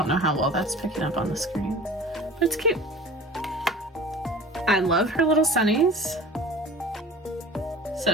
know how well that's picking up on the screen, but it's cute. I love her little sunnies. So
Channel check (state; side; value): normal; both; correlation 0.41